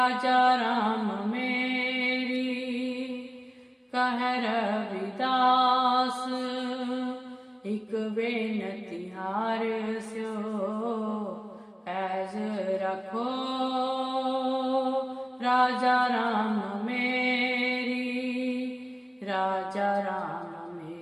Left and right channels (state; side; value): identical; both; correlation 1.00